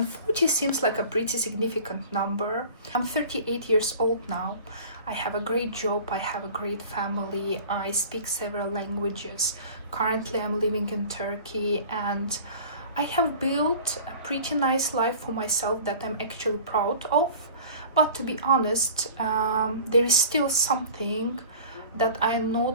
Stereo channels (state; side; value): inverted; both; correlation -0.42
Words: 40 seems like a pretty significant number. I'm 38 years old now. I have a great job, I have a great family, I speak several languages. Currently I'm living in Turkey, and I have built a pretty nice life for myself that I'm actually proud of. But to be honest, there is still something that I am